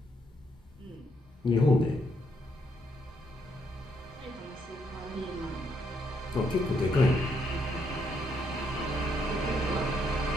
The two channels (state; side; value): normal; both; correlation 0.74